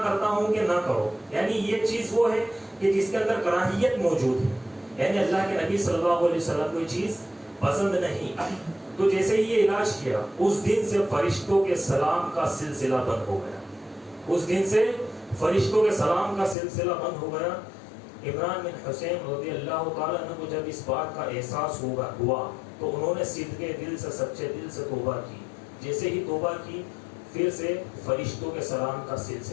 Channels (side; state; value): right; drops out; at 16.6 s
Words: کرتا ہوں کہ نہ کرو، یعنی یہ چیز وہ ہے کہ جس کے اندر کراہیت موجود ہے، یعنی اللہ کے نبی صلی اللہ علیہ وسلم کو یہ چیز پسند نہیں۔ تو جیسے ہی یہ علاج کیا اس دن سے فرشتوں کے سلام کا سلسلہ بند ہو گیا، اس دن سے فرشتوں کے سلام کا سلسلہ بند ہو گیا۔ عمران بن حسین رضی اللہ تعالیٰ عنہ کو جب اس بات کا احساس ہوا تو انہوں نے صدقے دل سے، سچے دل سے توبہ کی۔ جیسے ہی توبہ کی پھر سے فرشتوں کے سلام کا